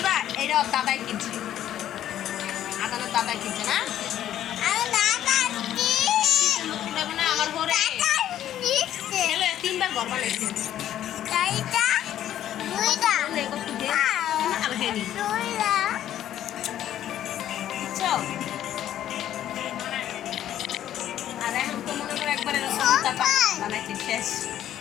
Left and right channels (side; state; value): right; quieter; 11.6 dB